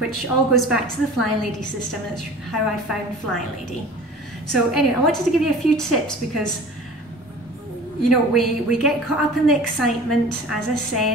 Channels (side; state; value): both; normal; correlation 0.42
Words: all goes back to the Flylady system. That's how I found Flylady. So anyway, I wanted to give you a few tips because, you know, we get caught up in the excitement, as I